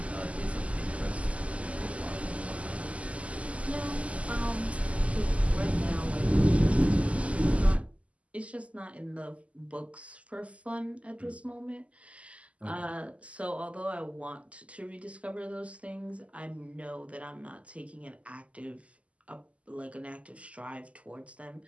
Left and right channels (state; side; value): late; left; 0.065 ms